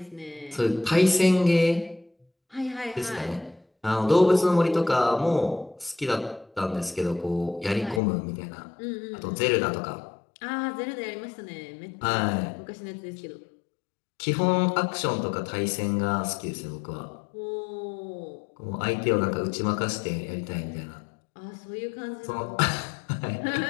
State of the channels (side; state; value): right; drops out; at 8.0 s